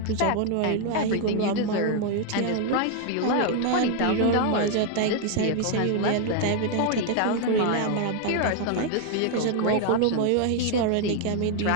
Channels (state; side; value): different; both; correlation 0.01